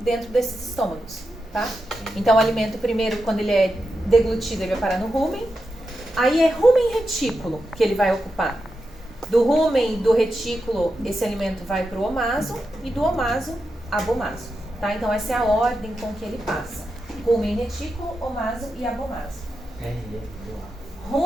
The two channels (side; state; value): both; normal; correlation 0.88